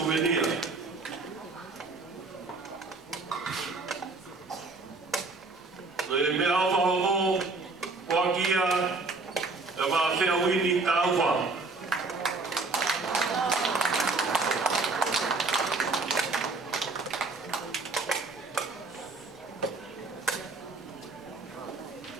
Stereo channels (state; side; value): quieter; left; 3.7 dB